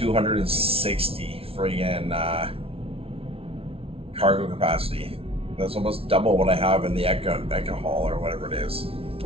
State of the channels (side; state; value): left; late; 0.27 ms